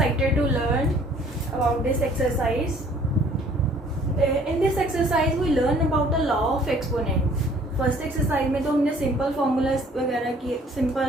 to learn about this exercise. In this exercise we learn about the law of exponent. First exercise में तो हमने simple formulas वगैरह की,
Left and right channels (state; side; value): normal; both; correlation 0.56